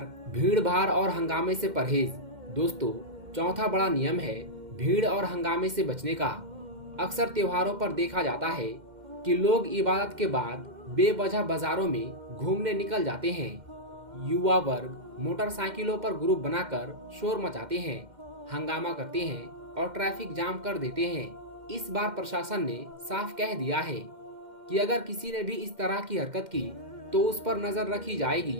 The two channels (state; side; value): late; left; 2.1 ms